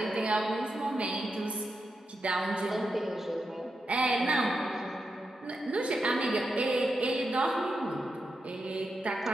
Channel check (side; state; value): both; normal; correlation 0.87